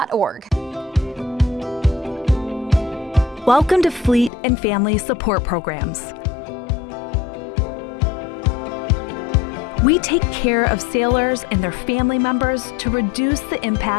Welcome to Fleet and Family Support Programs. We take care of sailors and their family members to reduce the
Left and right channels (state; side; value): drops out; right; at 4.3 s